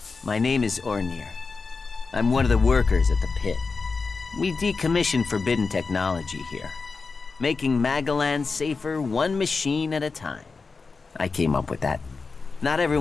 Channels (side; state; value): right; quieter; 4.4 dB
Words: My name is Ornir. I'm one of the workers at the pit. We decommission forbidden technology here, making Magalan safer one machine at a time. I came up with that. Not